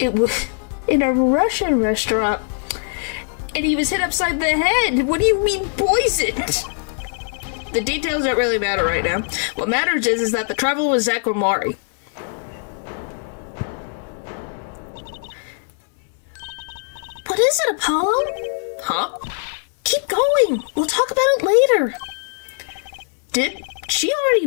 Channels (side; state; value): right; silent; 62 dB below the other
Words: was in a Russian restaurant, and he was hit upside the head. What do you mean poisoned? The details don't really matter right now. What matters is that the traveler was Zach Guamari. What is it, Apollo? Huh? Keep going. We'll talk about it later. Did she already